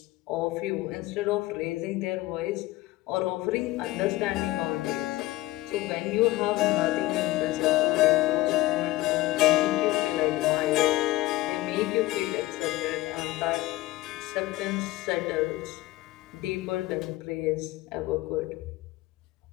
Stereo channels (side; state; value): right; quieter; 17.8 dB